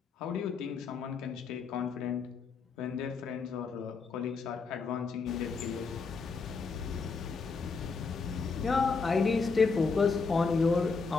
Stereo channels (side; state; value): right; quieter; 4.7 dB